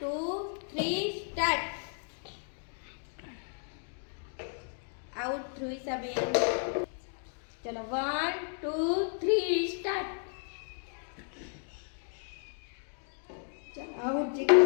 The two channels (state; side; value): silent; right; 55 dB below the other